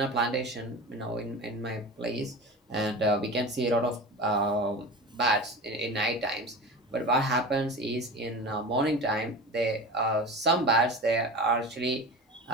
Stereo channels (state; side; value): normal; both; correlation 0.32